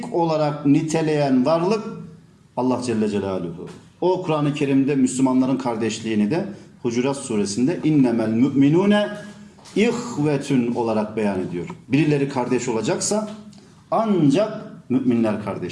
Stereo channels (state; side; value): identical; both; correlation 1.00